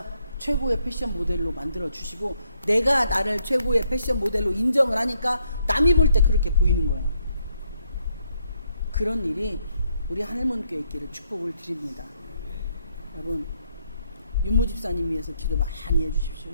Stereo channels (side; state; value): both; inverted; correlation -0.74